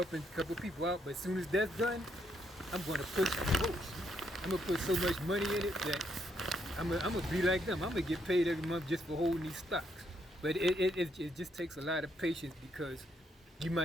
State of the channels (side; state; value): both; normal; correlation 0.75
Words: a couple people out, but as soon as that's done, I'm going to push the most. I'm going to put so much money in it that I'm going to be like them. I'm going to get paid every month just for holding these stocks. But it just takes a lot of patience, because you